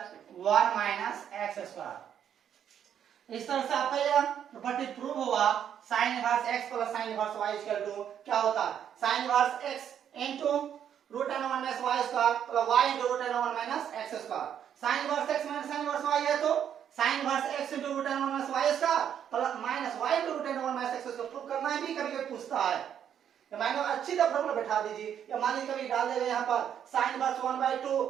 1 minus x square. इस तरह से आपका यह प्रॉपर्टी प्रूव हुआ, sine inverse x plus sine inverse y equal to क्या होता है, sine inverse x into root under 1 minus y square plus y into root under 1 minus x square. Sine inverse x minus sine inverse y है तो sine inverse x into root under 1 minus y square plus minus y into root under 1 minus x square prove करना है भी, कभी कभी पूछता है। या माइनस अच्छी तरह फॉर्मूला बैठा दीजिए। या मान लीजिए कभी डाल देगा यहाँ पर साइन इनवर्स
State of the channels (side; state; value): left; quieter; 9.1 dB